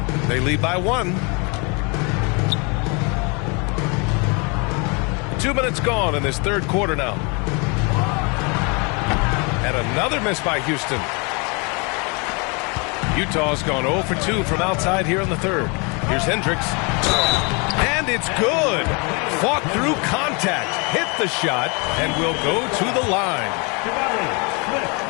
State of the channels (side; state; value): right; quieter; 31.7 dB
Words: They lead by 1. 2 minutes gone in this third quarter now. And another miss by Houston. Utah's gone 0 for 2 from outside here in the third. Here's Hendricks. And it's good. Fought through contact. Hit the shot and will go to the line.